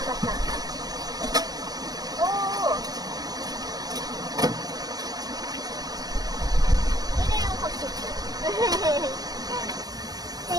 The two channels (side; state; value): left; late; 0.19 ms